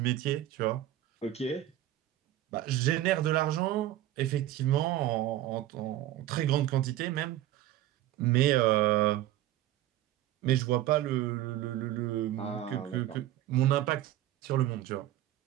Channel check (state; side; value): quieter; left; 13.5 dB